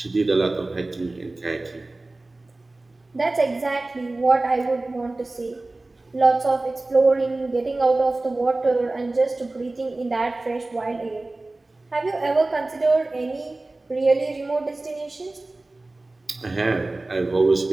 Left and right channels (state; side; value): quieter; left; 3.0 dB